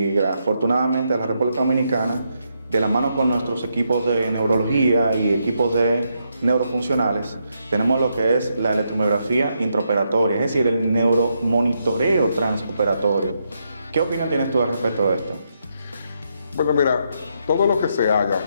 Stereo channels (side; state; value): both; inverted; correlation -0.79